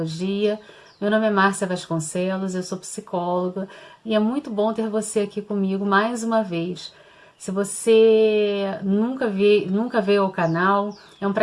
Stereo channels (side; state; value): both; identical; correlation 1.00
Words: Meu nome é Márcia Vasconcelos, eu sou psicóloga e é muito bom ter você aqui comigo mais uma vez. Se você nunca veio ao canal, é um